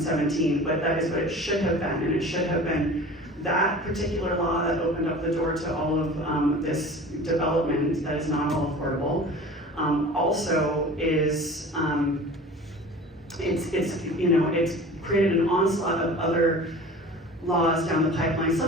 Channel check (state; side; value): normal; both; correlation 0.39